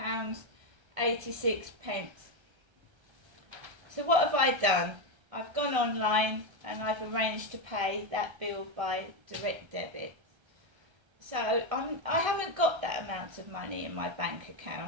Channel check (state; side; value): late; left; 1.3 ms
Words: So what have I done? I've gone online and I've arranged to pay that bill by direct debit. So I haven't got that amount of money in my bank